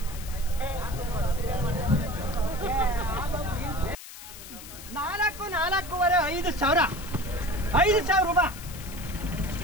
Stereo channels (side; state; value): left; noise; hiss, 14 dB below the sound